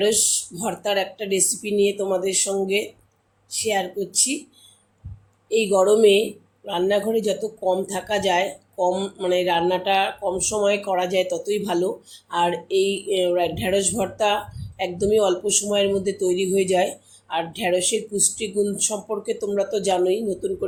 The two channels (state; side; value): identical; both; correlation 1.00